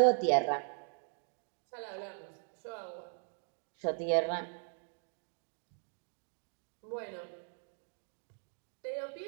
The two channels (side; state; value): left; silent; 52 dB below the other